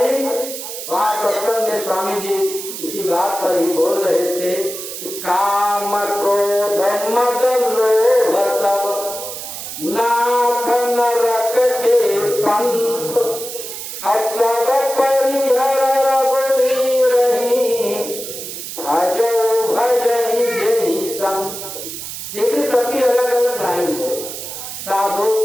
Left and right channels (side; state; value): right; noise; hiss, 8 dB below the sound